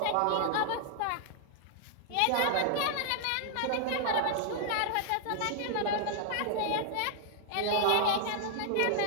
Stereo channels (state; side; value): different; both; correlation -0.01